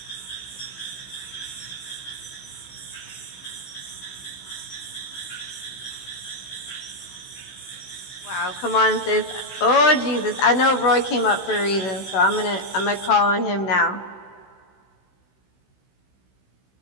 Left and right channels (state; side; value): late; right; 16 ms